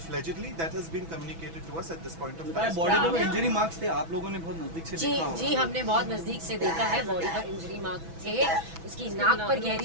That has been communicated to us at this point of time. Body पे इंजरी मार्क्स थे, आप लोगों ने बहुत नजदीक से देखा होगा. जी हमने बहुत नजदीक से देखा है. बॉडी पर इंजरी मार्क थे, उसकी नाक पर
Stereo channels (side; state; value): left; late; 6.1 ms